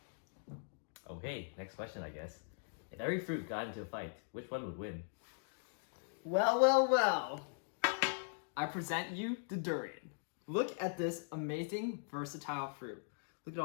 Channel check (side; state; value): right; silent; digital silence